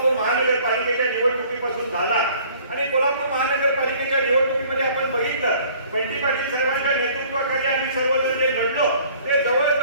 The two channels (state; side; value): inverted; both; correlation -0.54